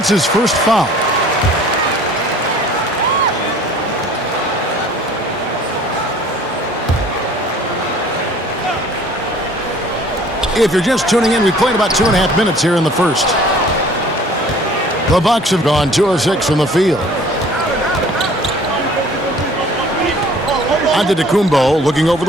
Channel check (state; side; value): normal; both; correlation 0.51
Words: his first foul. If you're just tuning in, we played about 2.5 minutes here in the first. The Bucks have gone 2 of 6 from the field. Antetokounmpo looking over